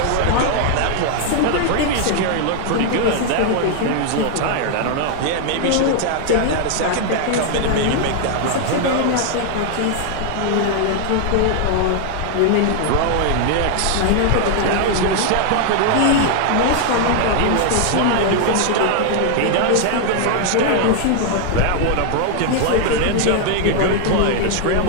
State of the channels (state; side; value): different; both; correlation 0.00